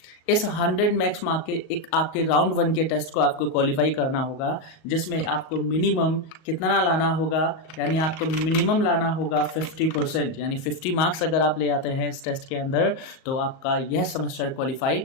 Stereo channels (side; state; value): right; late; 38 ms